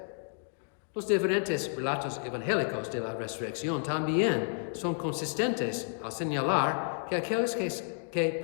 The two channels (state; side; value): silent; right; 57 dB below the other